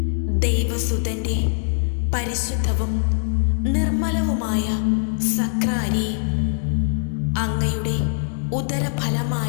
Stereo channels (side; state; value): right; silent; digital silence